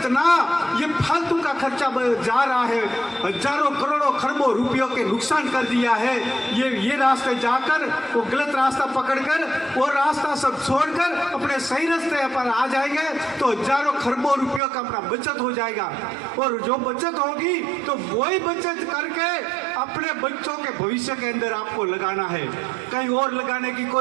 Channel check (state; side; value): drops out; left; at 14.6 s